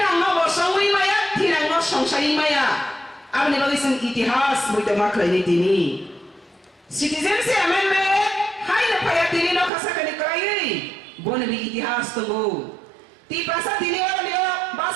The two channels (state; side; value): drops out; left; at 9.7 s